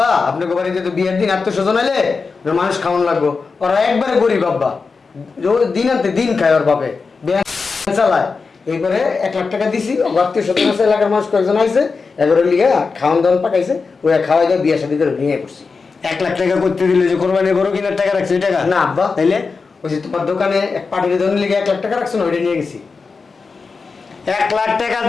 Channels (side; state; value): right; quieter; 4.7 dB